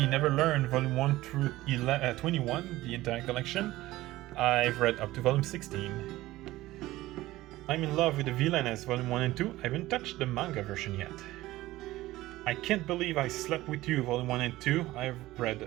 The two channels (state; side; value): quieter; left; 17.1 dB